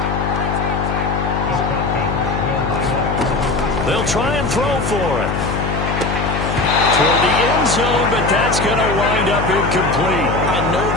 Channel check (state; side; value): noise; left; hum, 2 dB below the sound